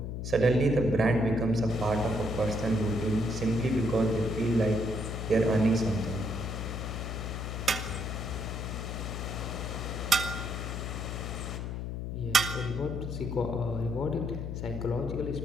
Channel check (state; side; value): noise; left; hum, 4 dB below the sound